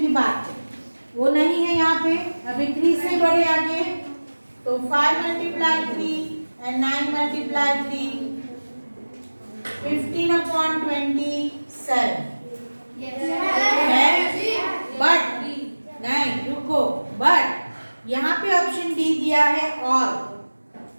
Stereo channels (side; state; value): both; inverted; correlation -1.00